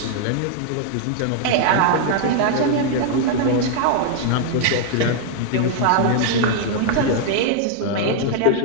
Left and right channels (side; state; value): both; different; correlation 0.00